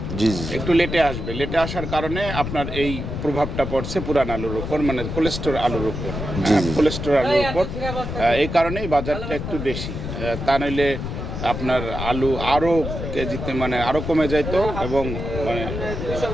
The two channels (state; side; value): noise; left; rumble, 5 dB below the sound